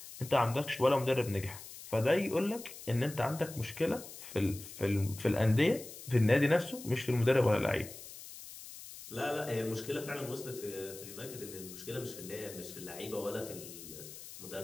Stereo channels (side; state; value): left; noise; hiss, 14 dB below the sound